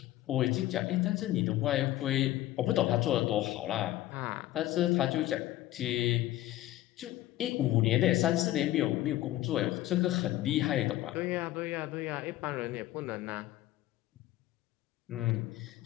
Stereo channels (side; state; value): right; quieter; 15.2 dB